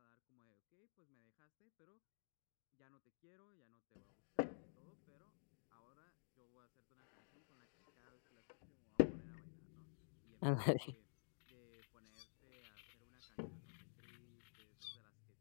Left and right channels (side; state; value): right; silent; digital silence